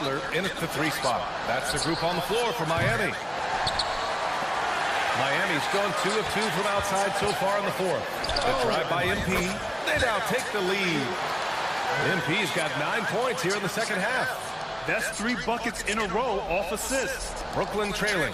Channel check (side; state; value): both; identical; correlation 1.00